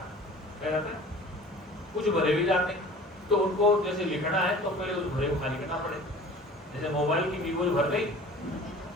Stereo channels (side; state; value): both; normal; correlation 0.44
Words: है। क्या जाता है? कुछ भरे भी जाते हैं, तो उनको जैसे लिखना है तो पहले उस भरे को खाली करना पड़े। जैसे मोबाइल की वीवो भर गई